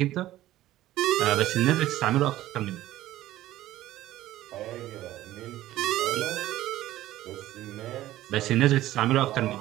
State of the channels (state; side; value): quieter; left; 14.8 dB